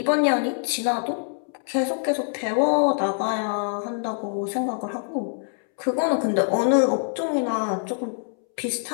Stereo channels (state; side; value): silent; right; 62 dB below the other